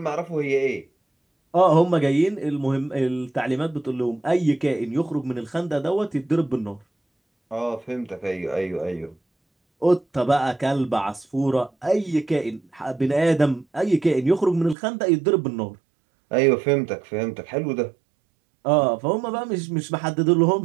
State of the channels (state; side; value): drops out; left; at 14.8 s